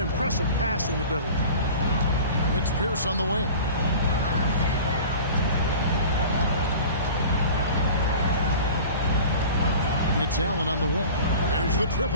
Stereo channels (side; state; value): both; inverted; correlation -0.39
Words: passing ability. It's Pierce on the wing. It's Allen on the wing. There's the